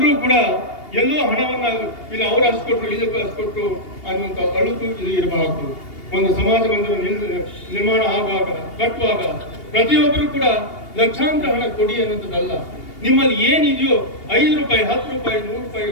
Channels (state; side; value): late; right; 2.8 ms